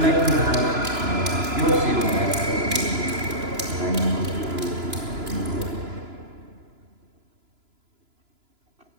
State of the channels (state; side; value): late; left; 3.0 ms